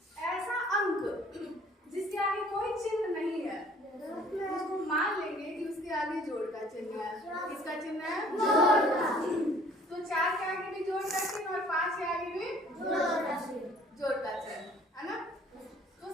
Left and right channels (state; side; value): normal; both; correlation 0.55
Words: ऐसा अंक जिसके आगे कोई चिन्ह नहीं है उसको मान लेंगे कि उसके आगे जोड़ का चिन्ह है। किसका चिन्ह है? जोड़ का। तो 4 के आगे भी जोड़ का चिन्ह और 5 के आगे भी जोड़ का चिन्ह है ना। तो